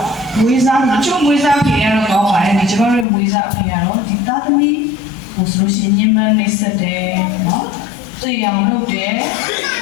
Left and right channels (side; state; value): right; drops out; at 3.1 s